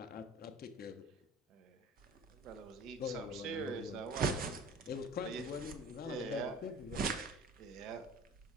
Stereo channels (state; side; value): normal; both; correlation 0.42